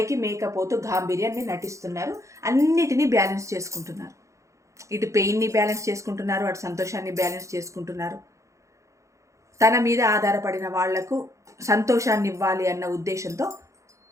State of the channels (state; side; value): late; left; 0.15 ms